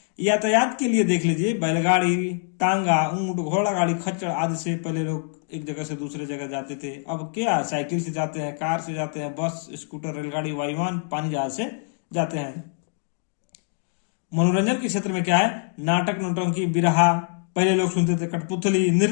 यातायात के लिए देख लीजिए, बैलगाड़ी, टांगा, ऊंट, घोड़ा गाड़ी, खच्चर आदि से पहले लोग एक जगह से दूसरे जगह जाते थे। अब क्या? साइकिल से जाते हैं, कार से जाते हैं, बस, स्कूटर, रेलगाड़ी, वायुयान, पानी जहाज से जाते हैं। मनोरंजन के क्षेत्र में क्या है? नाटक, नौटंकी, बिरहा पहले लोग सुनते थे, कठपुतली,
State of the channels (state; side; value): silent; right; 62 dB below the other